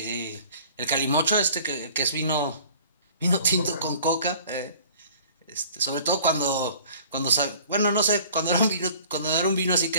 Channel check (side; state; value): both; inverted; correlation -0.49